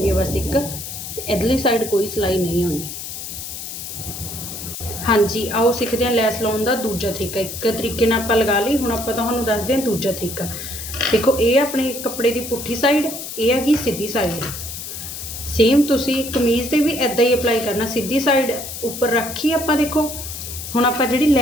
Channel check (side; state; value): left; noise; hiss, 8 dB below the sound